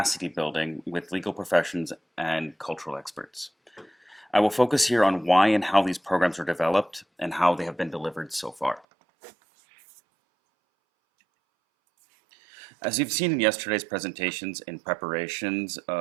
building with legal professions and cultural experts. I will focus here on why and how these programs are developed and how they have been delivered so far. As you've seen in yesterday's presentations and preparations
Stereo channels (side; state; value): left; drops out; at 8.8 s